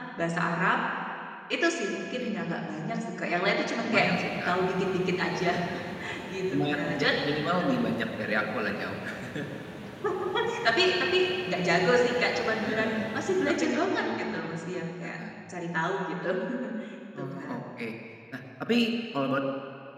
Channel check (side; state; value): both; identical; correlation 1.00